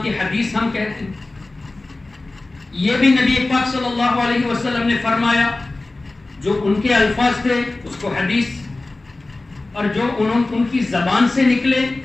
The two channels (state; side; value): quieter; right; 3.1 dB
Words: کی حدیث ہم کہتے ہیں. یہ بھی نبی پاک صلی اللہ علیہ وسلم نے فرمایا. جو ان کے الفاظ تھے اس کو حدیث، اور جو ان کی زبان سے نکلے